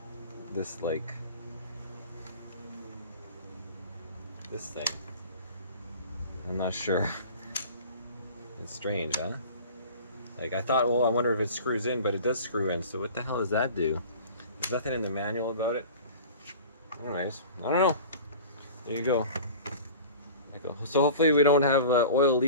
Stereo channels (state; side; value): inverted; both; correlation -0.41